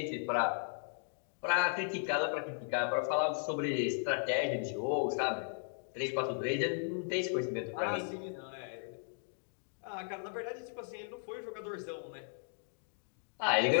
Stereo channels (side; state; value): right; silent; digital silence